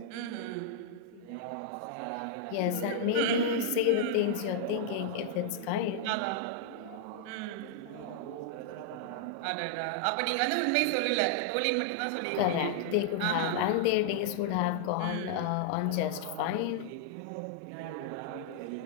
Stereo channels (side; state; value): both; different; correlation -0.01